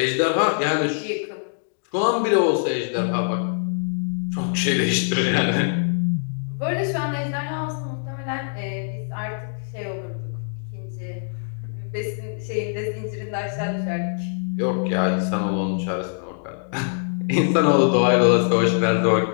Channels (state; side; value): silent; right; digital silence